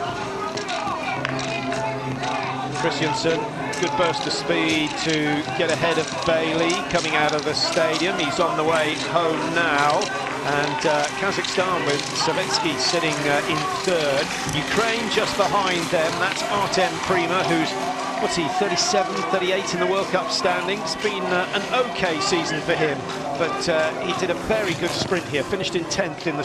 Christiansen, good burst of speed to get ahead of Bailey coming out of the stadium. He's on the way home now, and Kazakhstan with Savetsky sitting in 3rd. Ukraine just behind them. That's Artem Prima, who's, what's he, 37, 38 in the World Cup standings. Been an okay season for him, but he did a very good sprint here, finished in 10th in the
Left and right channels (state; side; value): identical; both; correlation 1.00